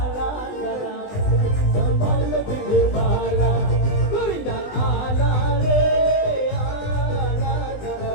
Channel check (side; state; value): right; late; 20 ms